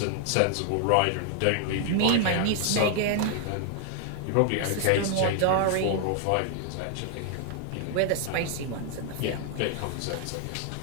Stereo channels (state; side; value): different; both; correlation 0.00